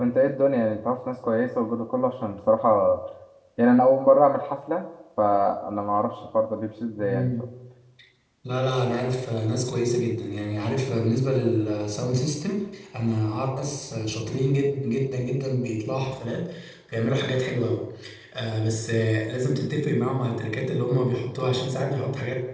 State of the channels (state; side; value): identical; both; correlation 1.00